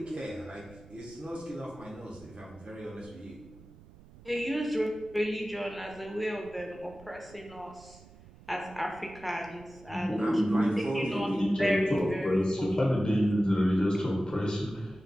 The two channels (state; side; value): noise; right; rumble, 21 dB below the sound